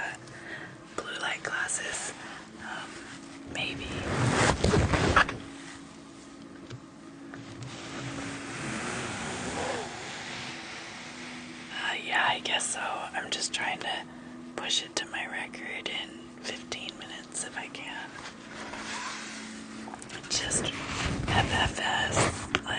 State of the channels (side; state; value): both; identical; correlation 1.00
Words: Blue light glasses, maybe. Yeah, I guess so. I'm just trying to push it to my record in 15 minutes if I can. Just FFS,